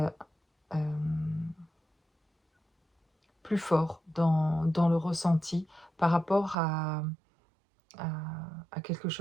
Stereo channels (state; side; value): drops out; left; at 6.6 s